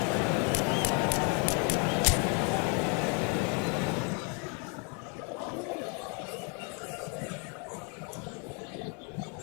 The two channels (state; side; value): quieter; right; 36.5 dB